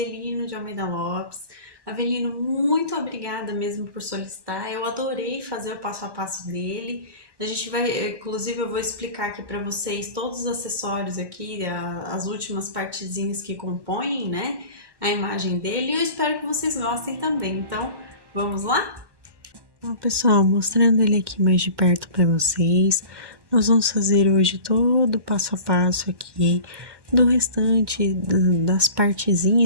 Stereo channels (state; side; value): late; left; 1.1 ms